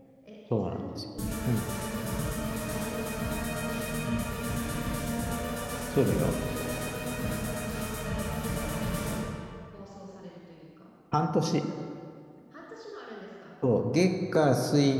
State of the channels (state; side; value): identical; both; correlation 1.00